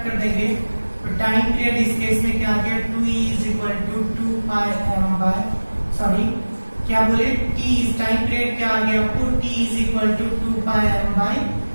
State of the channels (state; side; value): inverted; both; correlation -1.00